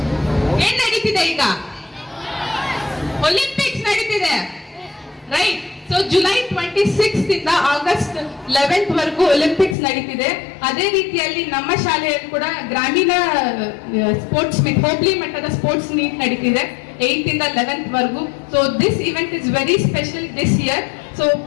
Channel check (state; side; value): drops out; right; at 9.8 s